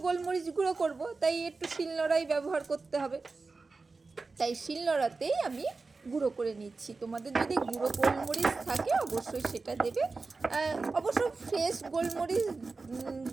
গোলমরিচ গুঁড়ো করব, তাই একটু শিলনোড়াই ব্যবহার করতে হবে, তাই শিলনোড়াতেই আমি গুঁড়ো করে নিচ্ছি। তোমাদের যদি গুঁড়ো গোলমরিচ থাকে অবশ্যই সেটা দেবে। অবশ্য ফ্রেশ গোলমরিচ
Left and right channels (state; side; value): quieter; left; 4.0 dB